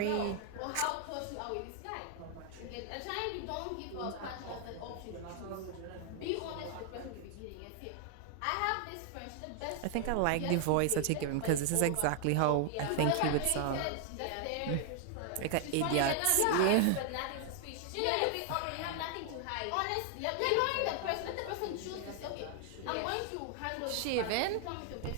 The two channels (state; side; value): different; both; correlation 0.00